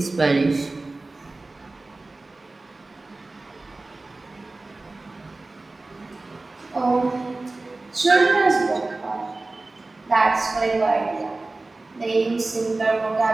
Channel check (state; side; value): quieter; left; 3.2 dB